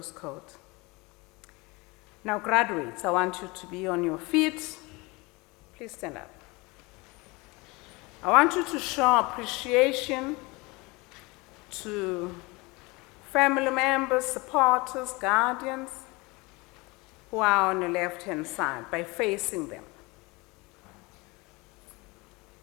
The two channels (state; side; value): quieter; right; 25.0 dB